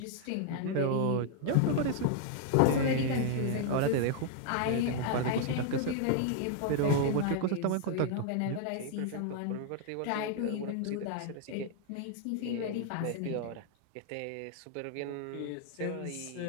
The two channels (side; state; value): both; different; correlation 0.00